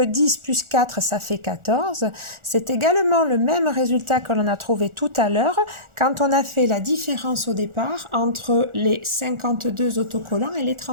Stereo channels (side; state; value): left; late; 1.4 ms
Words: plus 4, ça fait 14. C'est également le même résultat que l'on a trouvé tout à l'heure quand on a fait la différence au départ entre les 52 autocollants et les